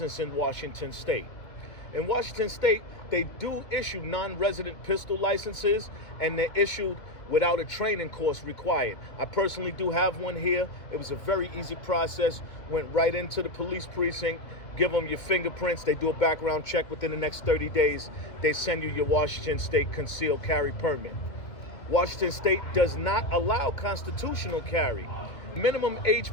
in Washington State. In Washington State, they do issue non-resident pistol licenses, and they're issued without a training course required. I personally do have one here. It was a very easy process. Went right into the police precinct, give them your fingerprints. They do a background check within the next 30 days. They send you your Washington State concealed carry permit. Washington State does not allow constitutional carry. Minimum age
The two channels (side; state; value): right; late; 2.2 ms